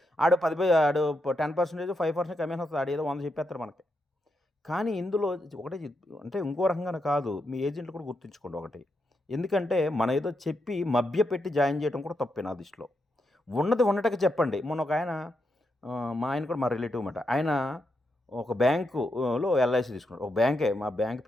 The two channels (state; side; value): normal; both; correlation 0.83